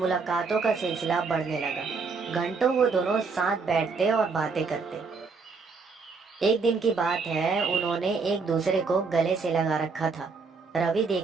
का सिलसिला बढ़ने लगा। घंटों वो दोनों साथ बैठते और बातें करते। एक दिन की बात है, उन्होंने एक दूसरे को गले से लगा रखा था। रवि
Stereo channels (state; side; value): quieter; left; 4.7 dB